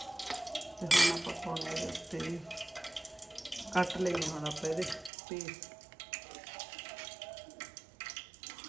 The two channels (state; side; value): drops out; left; at 5.1 s